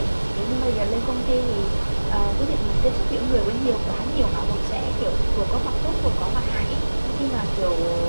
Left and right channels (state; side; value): inverted; both; correlation -1.00